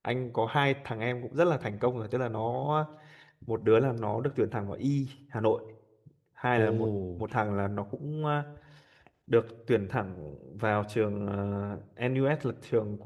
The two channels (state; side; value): identical; both; correlation 1.00